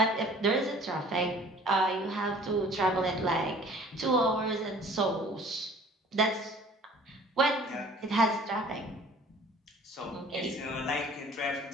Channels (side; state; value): both; normal; correlation 0.50